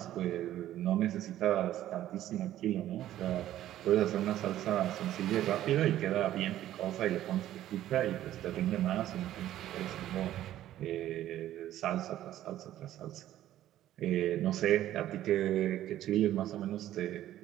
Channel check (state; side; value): quieter; left; 13.0 dB